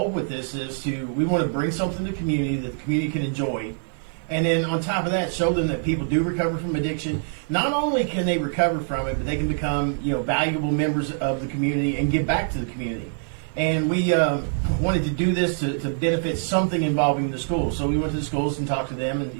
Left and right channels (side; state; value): left; silent; 62 dB below the other